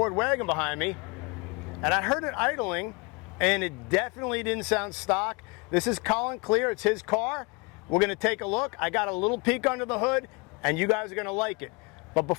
Wagon behind me, and I heard it idling, and it definitely didn't sound stock. This is Colin Clear, it's his car. We're gonna take a look. I got a little peek under the hood, and you guys are gonna like it. But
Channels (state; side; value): quieter; right; 29.0 dB